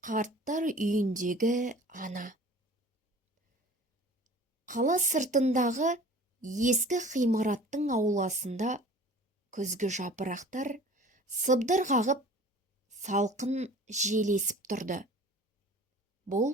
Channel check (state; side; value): normal; both; correlation 0.45